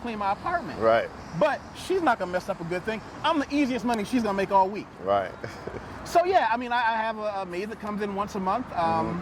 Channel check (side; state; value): both; identical; correlation 1.00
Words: my apartment. Right. But she's not gonna mess up a good thing. I'm the easiest money she's gonna make all week. Right. So yeah, I mean, I have a maid that comes in once a month.